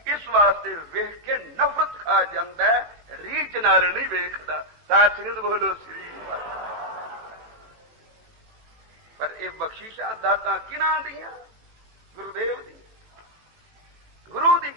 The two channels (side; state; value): left; late; 18 ms